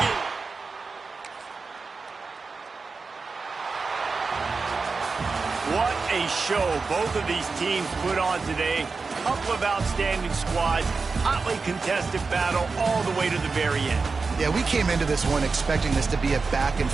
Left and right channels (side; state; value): left; quieter; 4.4 dB